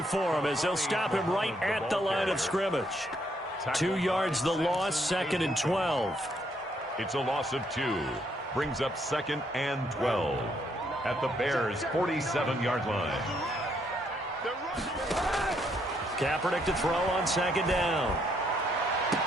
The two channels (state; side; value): normal; both; correlation 0.72